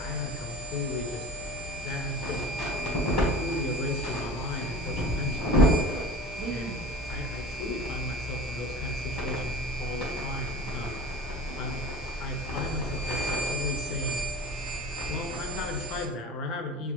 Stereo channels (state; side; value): normal; both; correlation 0.38